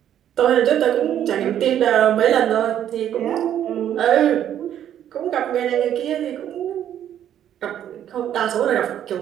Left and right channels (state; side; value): quieter; left; 10.5 dB